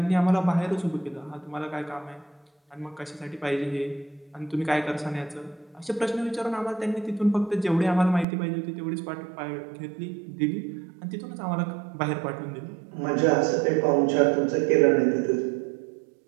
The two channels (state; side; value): drops out; left; at 8.2 s